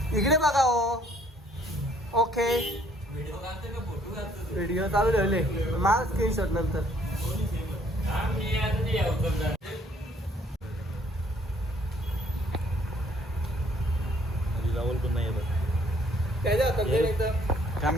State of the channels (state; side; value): normal; both; correlation 0.62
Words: इकडे बघा हो. ओके व्हिडिओ चालू ठेवले. मला स्क्रीनशॉट नंतर. राहुल पण नाही येत. त्याच्या हातात दे एकदम.